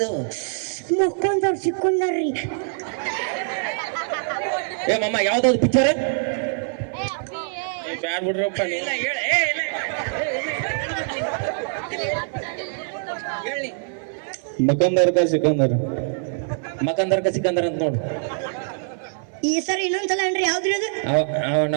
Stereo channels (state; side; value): silent; left; 58 dB below the other